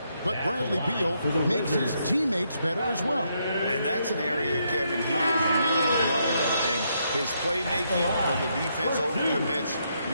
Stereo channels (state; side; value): inverted; both; correlation -0.77